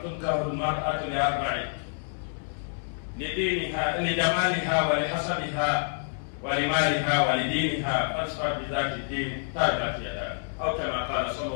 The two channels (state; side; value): silent; right; digital silence